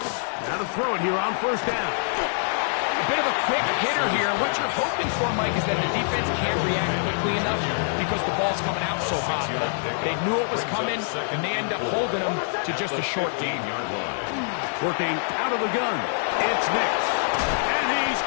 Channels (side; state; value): right; silent; digital silence